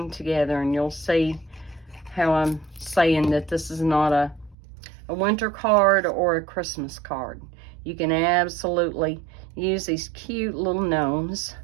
together, and you'll see how I'm saying that this is not a winter card or a Christmas card. You can absolutely use these cute little gnomes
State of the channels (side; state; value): left; drops out; at 4.5 s